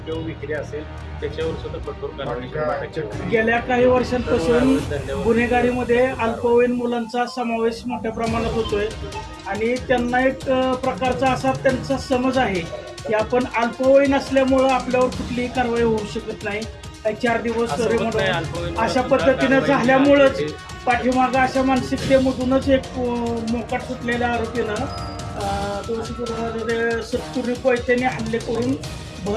किंवा विक्री असेल त्याच्यावर सुद्धा कठोर कारवाई गेल्या काही वर्षांपासून गुन्हेगारीमध्ये अल्पवयीन मुलांचा समावेश मोठ्या प्रमाणात होतोय आणि त्यांना एक प्रकारचा असा त्यांचा समज आहे की आपण अल्पवयीन असल्यामुळं आपल्यावर कुठलीही कारवाई होऊ शकत नाही. 4 दिवस अशा पद्धतीनं झाल्यामुळंच पाठीमागं अशा मानसिकतेमधूनच एक मोकाट सुटलेल्या आरोपीनं तुळशीपुरामध्ये सत्तुरी कोयत्याने हल्ले करून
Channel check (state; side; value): identical; both; correlation 1.00